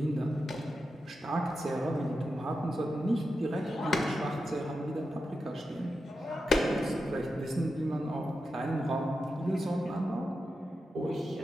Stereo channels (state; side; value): normal; both; correlation 0.89